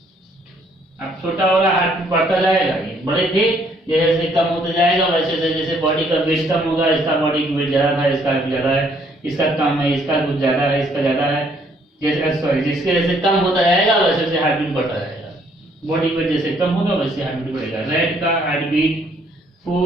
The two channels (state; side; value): normal; both; correlation 0.66